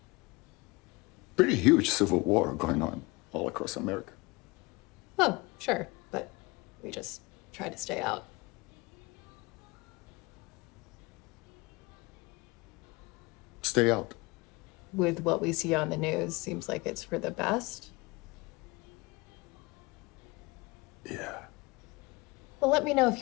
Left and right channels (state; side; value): quieter; right; 24.8 dB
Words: pretty huge civil war going on all across America? Oh, sure, but we just try to stay out. Stay out. With what we see on the news, seems like it's for the best. Yeah. Well, let me know if